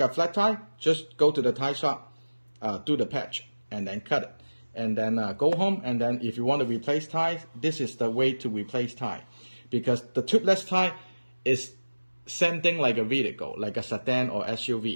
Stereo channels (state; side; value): inverted; both; correlation -1.00